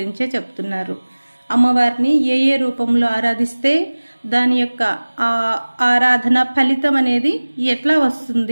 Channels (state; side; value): inverted; both; correlation -1.00